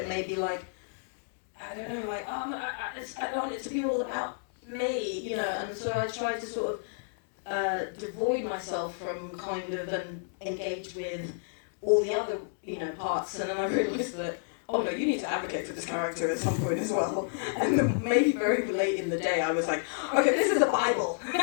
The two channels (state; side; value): silent; right; digital silence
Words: maybe like, I don't know, like, I don't want it to be all about me, and so I tried to sort of devoid myself from kind of and engage with all the other, parts, and then I realised that, oh no, you need to advocate for this character at some point as well. And then maybe very late in the day I was like, okay, this is the Bible,